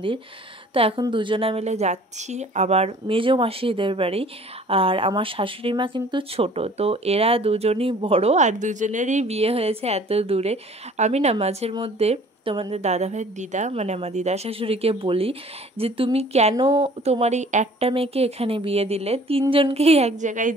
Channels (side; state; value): both; normal; correlation 0.51